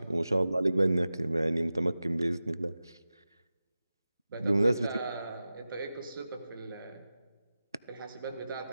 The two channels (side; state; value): both; inverted; correlation -0.94